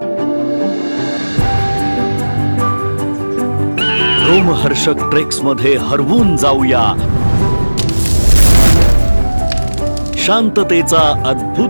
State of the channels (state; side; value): inverted; both; correlation -1.00